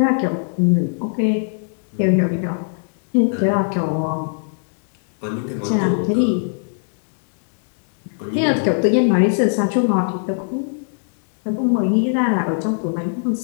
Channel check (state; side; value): silent; right; digital silence